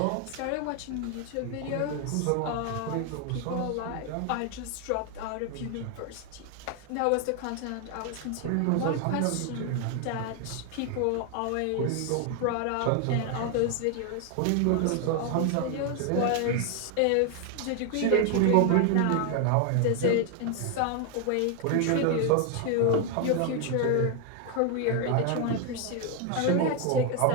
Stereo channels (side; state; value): both; different; correlation 0.01